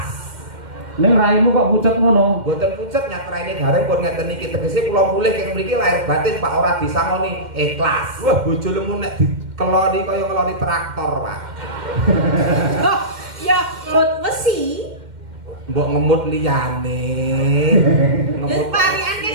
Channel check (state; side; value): late; left; 2.1 ms